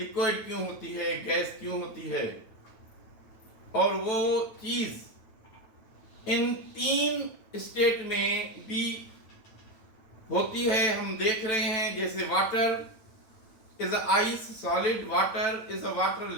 क्यों होती है, गैस क्यों होती है, और वो चीज इन 3 स्टेट में भी होती है। हम देख रहे हैं जैसे water is a ice solid, water is a water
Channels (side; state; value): right; late; 9.2 ms